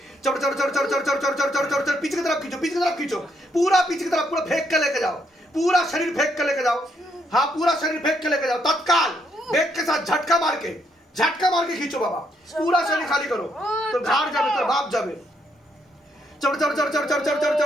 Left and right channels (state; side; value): normal; both; correlation 0.74